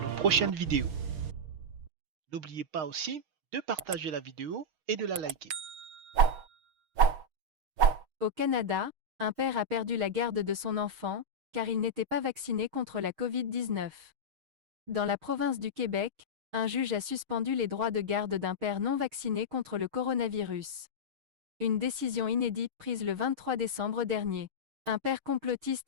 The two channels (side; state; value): left; late; 6.4 ms